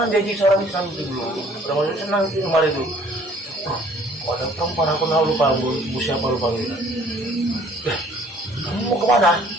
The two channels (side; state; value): both; normal; correlation 0.56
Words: janji seorang Islam itu dulu. Orang masih senang itu kemarin itu. Kok ada perempuan aku tahu lupa, bu siapa lupa gitu. Kamu mau kemana?